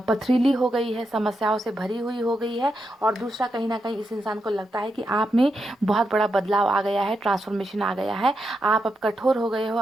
पथरीली हो गई है, समस्याओं से भरी हुई हो गई है। और दूसरा, कहीं ना कहीं इस इंसान को लगता है कि आप में बहुत बड़ा बदलाव आ गया है, ट्रांसफॉर्मेशन आ गया है, आप अब कठोर हो गए हो,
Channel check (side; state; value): both; normal; correlation 0.85